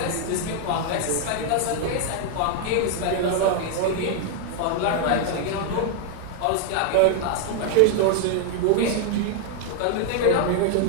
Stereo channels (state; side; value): different; both; correlation 0.00